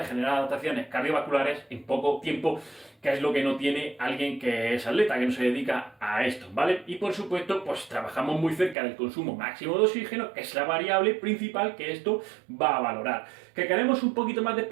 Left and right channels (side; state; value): left; drops out; at 8.8 s